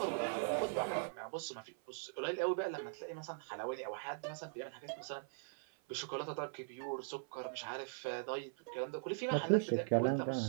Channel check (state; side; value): silent; left; 51 dB below the other